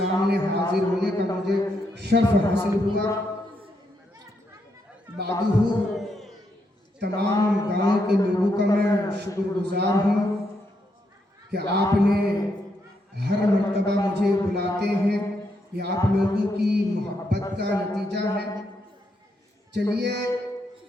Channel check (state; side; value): normal; both; correlation 0.79